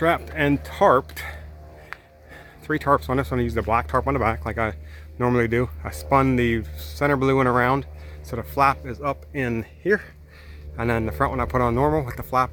and tarped. 3 tarps on this one. I used the black tarp on the back like I normally do. I spun the center blue one around so the flap is up in here, and then the front one I put on normal with the flap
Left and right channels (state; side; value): identical; both; correlation 1.00